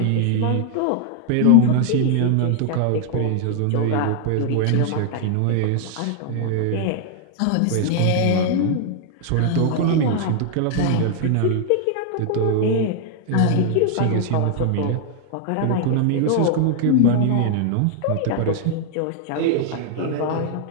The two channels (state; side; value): different; both; correlation 0.00